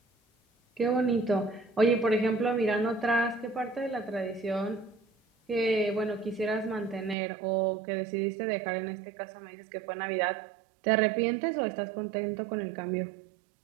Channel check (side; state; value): left; drops out; at 7.2 s